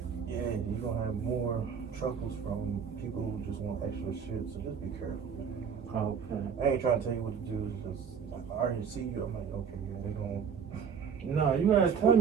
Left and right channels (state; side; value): quieter; left; 6.9 dB